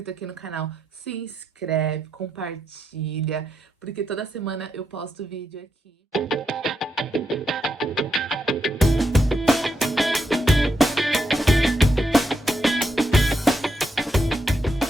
aqui no canal, se inscreve, compartilha, porque toda semana eu posto vídeo aqui.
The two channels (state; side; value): normal; both; correlation 0.82